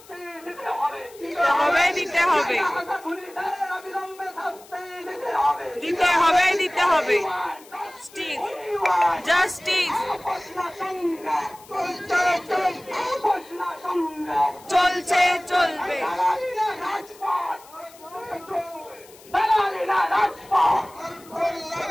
দিতে হবে দিতে হবে দিতে হবে জাস্টিস চলছে চলবে।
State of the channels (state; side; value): noise; left; hiss, 23 dB below the sound